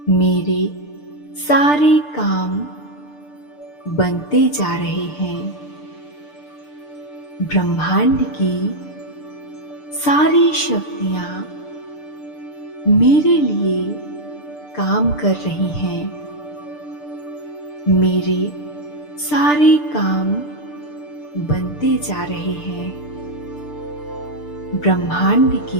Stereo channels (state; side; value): late; right; 6.8 ms